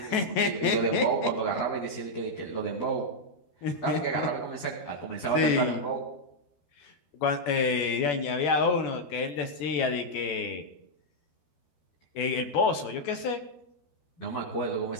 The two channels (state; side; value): late; right; 13 ms